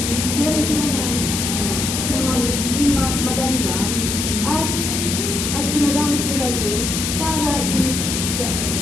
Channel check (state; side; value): noise; left; hiss, 2 dB below the sound